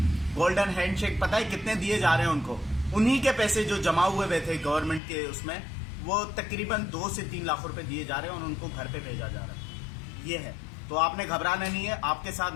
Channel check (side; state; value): right; drops out; at 5.0 s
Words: गोल्डन हैंडशेक पता है कितने दिए जा रहे हैं उनको? उन्हीं के पैसे जो जमा हुए थे गवर्नमेंट के उसमें, वो तकरीबन 2 से 3 लाख रुपए दिए जा रहे हैं और उनको घर पे भेजा जा रहा है। ये है, तो आपने घबराना नहीं है, आपके साथ